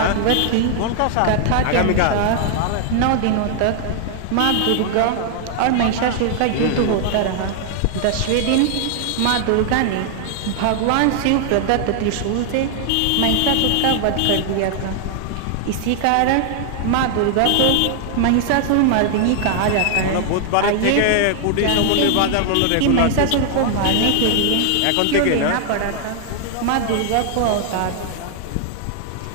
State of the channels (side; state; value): both; different; correlation 0.00